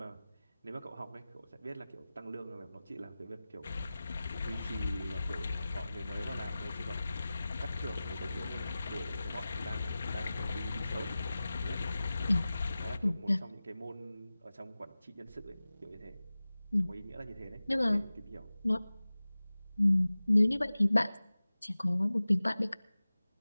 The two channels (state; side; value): inverted; both; correlation -0.97